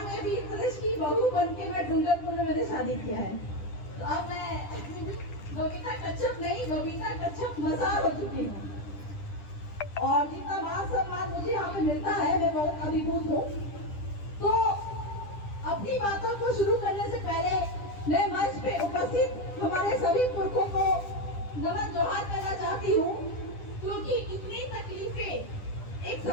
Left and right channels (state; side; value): late; right; 10 ms